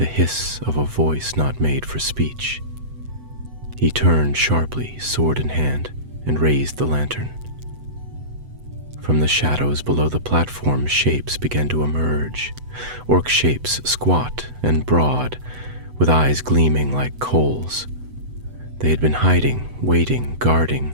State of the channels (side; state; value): left; late; 8.0 ms